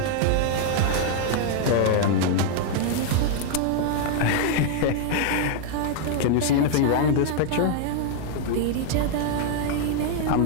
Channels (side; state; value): both; different; correlation 0.00